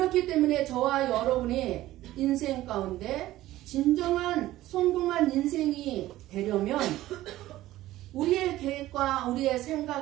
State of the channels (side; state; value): left; quieter; 15.5 dB